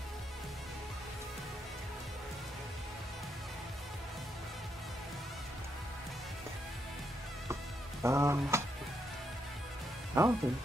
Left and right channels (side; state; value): both; normal; correlation 0.79